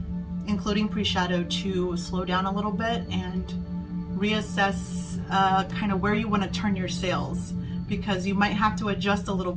including pre-shadow, to slow down a little bit and reassess kind of where you want to turn your sails, because you might have to adjust a little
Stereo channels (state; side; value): identical; both; correlation 1.00